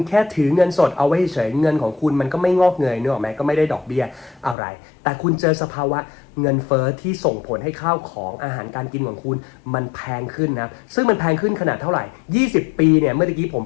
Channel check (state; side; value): drops out; right; at 4.5 s